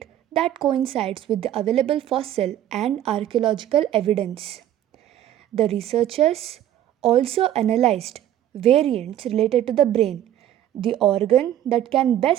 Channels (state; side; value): quieter; left; 11.9 dB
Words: that coincides with the available fossil and archaeological evidence. The researchers also analyzed variants related to the brain, the organ that can